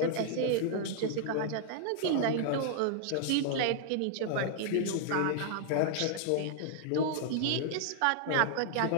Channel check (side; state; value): both; different; correlation 0.00